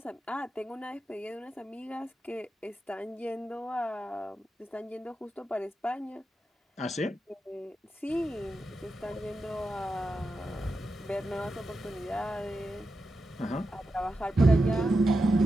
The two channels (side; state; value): both; normal; correlation 0.89